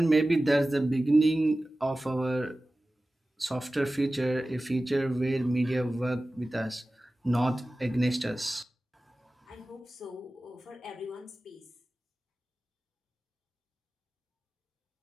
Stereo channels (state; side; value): normal; both; correlation 0.96